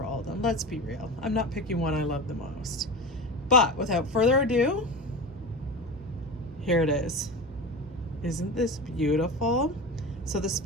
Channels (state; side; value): normal; both; correlation 0.27